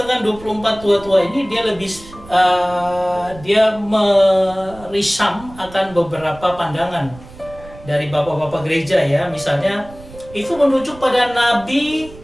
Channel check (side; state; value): right; noise; rumble, 19 dB below the sound